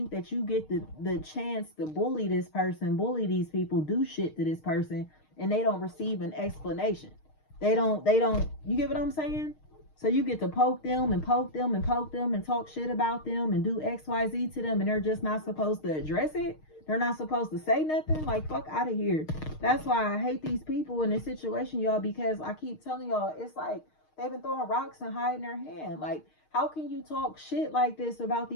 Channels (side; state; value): right; late; 6.5 ms